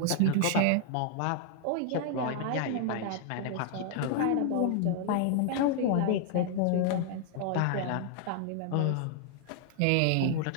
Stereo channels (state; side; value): different; both; correlation 0.00